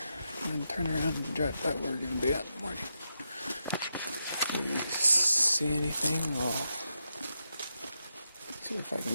and then turn around and drive by where we're gonna be at in the morning. If we see anything, I'll see if I can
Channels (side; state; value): both; inverted; correlation -0.85